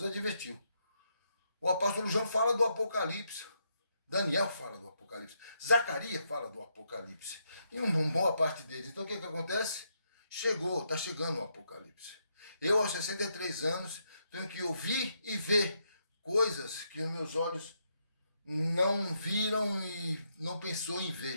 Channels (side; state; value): both; inverted; correlation -0.78